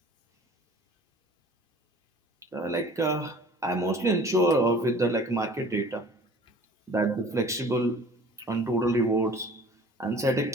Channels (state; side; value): normal; both; correlation 0.47